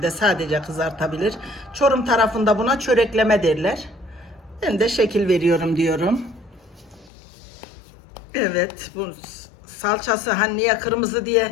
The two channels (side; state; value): right; drops out; at 7.1 s